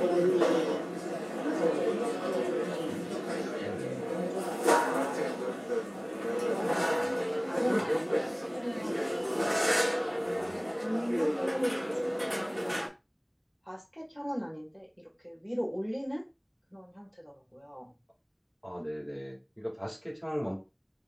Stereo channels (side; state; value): both; identical; correlation 1.00